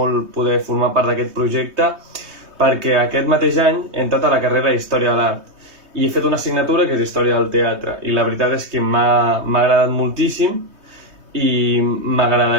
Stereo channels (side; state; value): left; late; 3.2 ms